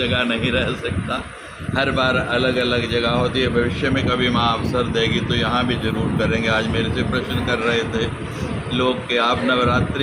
नहीं रह सकता, हर बार अलग अलग जगह होती है। भविष्य में कभी माँ अवसर देगी तो यहाँ भी जरूर करेंगे। आज मेरे से प्रश्न कर रहे थे लोग कि आप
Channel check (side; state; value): both; identical; correlation 1.00